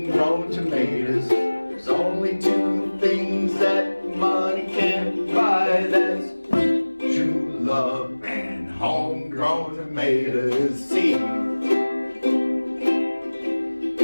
tomatoes? There's only two things that money can't buy. That's true love and homegrown tomatoes. See.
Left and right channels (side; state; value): both; inverted; correlation -1.00